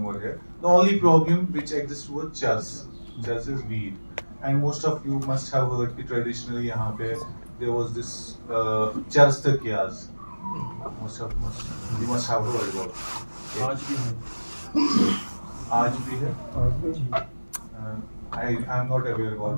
over here. The only problem which exists was chas. Chas is weed. And most of you must have heard that traditionally यहाँ पे there was this चरस तकियास. You must have heard about it. आज भी है. आज भी है. I am not aware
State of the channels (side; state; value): both; inverted; correlation -1.00